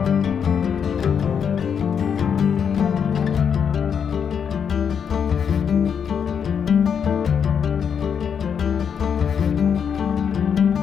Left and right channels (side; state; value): right; quieter; 7.3 dB